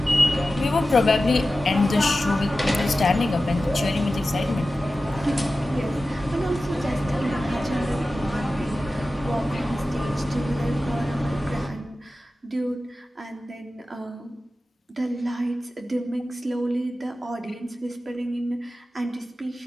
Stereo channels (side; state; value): both; normal; correlation 0.94